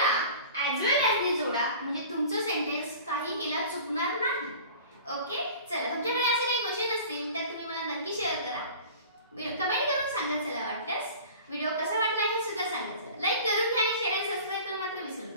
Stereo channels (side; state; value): both; inverted; correlation -0.42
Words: ऍज वेल ऍज ने जोडा, म्हणजे तुमचं सेंटेन्स काही केला चुकणार नाही. ओके, चला तुमच्याकडे असे काही क्वेश्चन असतील तर तुम्ही मला नक्की शेअर करा, कमेंट करून सांगा. चला वाटल्यास व्हिडिओ कसा वाटला हे सुद्धा सांगा. चला लाईक करून घ्या आणि शेअर आणि सबस्क्राइब करून मात्र विसरू